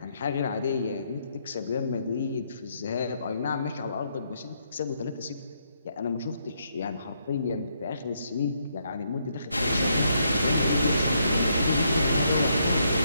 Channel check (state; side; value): inverted; both; correlation -0.75